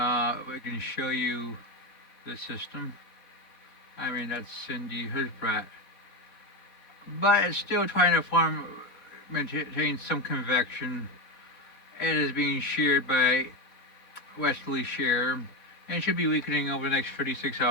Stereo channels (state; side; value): late; right; 4.2 ms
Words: We can show you the system. I mean, that's Cindy. Here's Bret. But it's still trying to maintain some convection. It is being sheared by westerly shear and should be weakening over the next 36